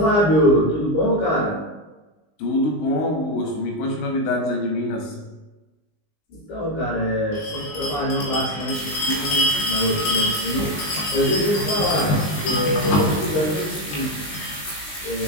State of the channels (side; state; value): right; late; 20 ms